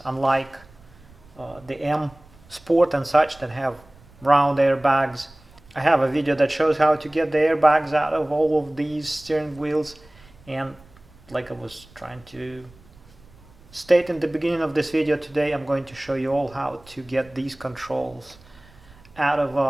unlike the M Sport and such that have round airbags. I have a video that shows how to get the airbags out of all of these steering wheels, and like I was trying to state in the beginning of this video, today I'm going to show you all how to get these controls out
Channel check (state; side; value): noise; right; rumble, 25 dB below the sound